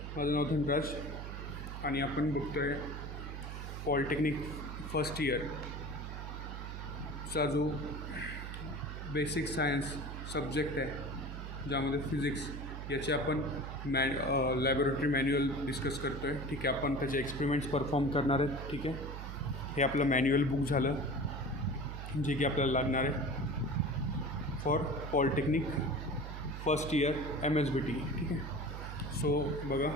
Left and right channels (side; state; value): right; noise; hum, 7 dB below the sound